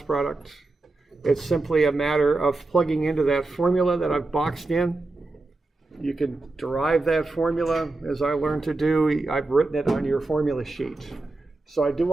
product. It's simply a matter of plugging into that formula that I've boxed in. You can derive that formula, as I learned to do. I've written it on your formula sheet. So I do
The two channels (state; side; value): quieter; left; 3.2 dB